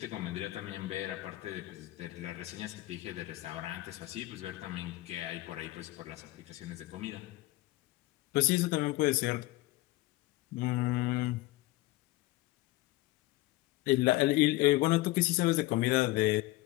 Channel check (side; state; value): right; quieter; 18.5 dB